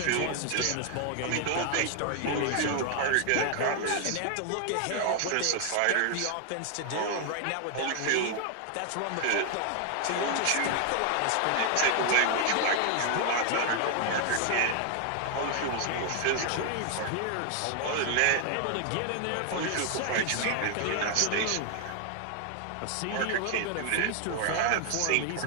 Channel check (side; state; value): both; different; correlation 0.00